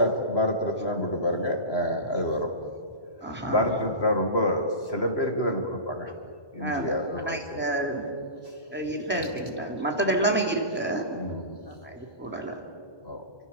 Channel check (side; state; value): right; late; 1.2 ms